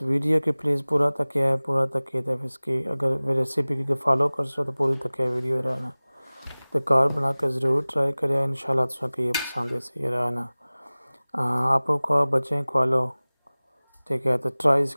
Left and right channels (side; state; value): both; inverted; correlation -0.99